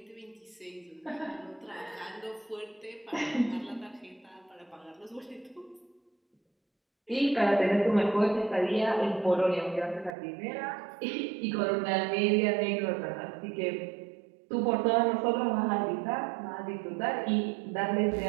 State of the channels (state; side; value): drops out; left; at 10.2 s